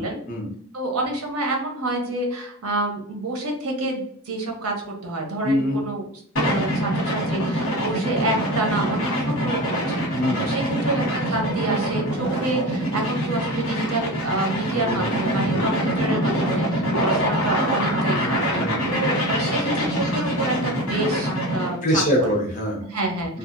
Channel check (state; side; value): normal; both; correlation 0.28